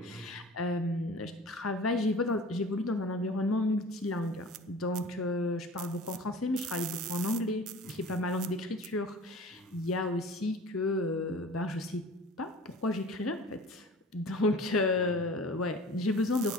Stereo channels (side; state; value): both; normal; correlation 0.42